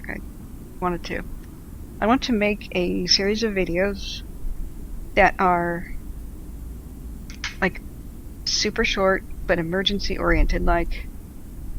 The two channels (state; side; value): identical; both; correlation 1.00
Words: I wanted to. I want to make a series of videos that are, like, super short, but emergency-oriented, like,